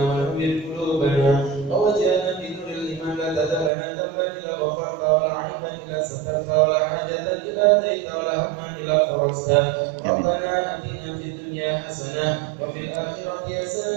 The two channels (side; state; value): left; drops out; at 3.7 s